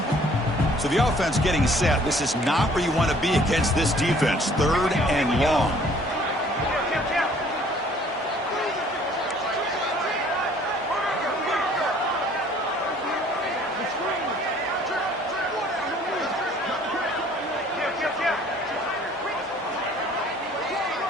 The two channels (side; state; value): both; normal; correlation 0.56